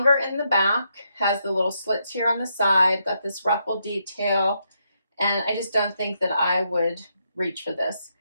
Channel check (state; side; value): inverted; both; correlation -0.79